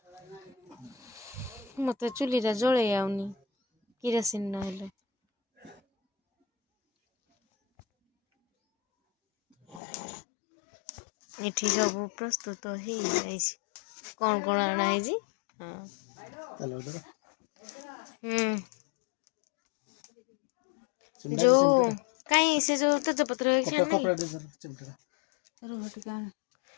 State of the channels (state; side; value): drops out; right; at 9.8 s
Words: मत चुलीटा जले आउनी किरासिन ना एठी सब प्रस्तुत हो कौन कौन आना है जो कहीं से जो तेजपत्र